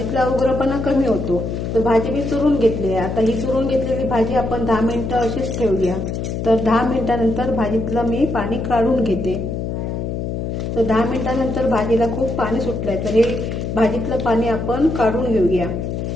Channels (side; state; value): left; noise; hum, 3 dB below the sound